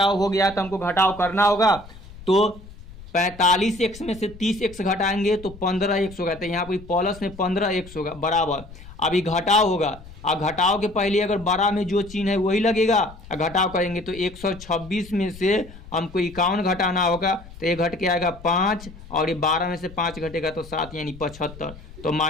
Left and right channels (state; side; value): noise; left; rumble, 18 dB below the sound